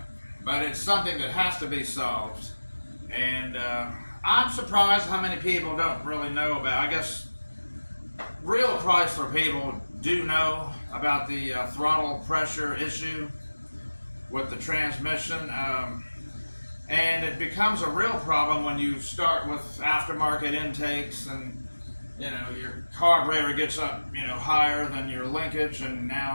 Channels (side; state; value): both; inverted; correlation -1.00